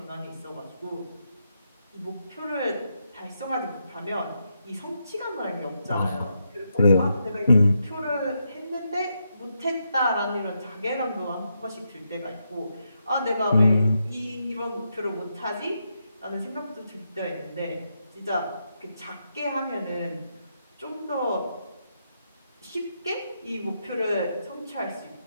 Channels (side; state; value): both; inverted; correlation -0.82